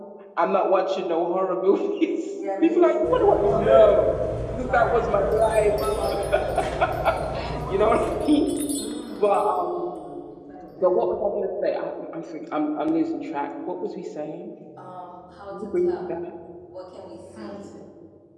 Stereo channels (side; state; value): both; identical; correlation 1.00